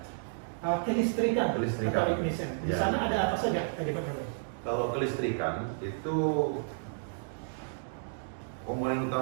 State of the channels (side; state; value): left; silent; digital silence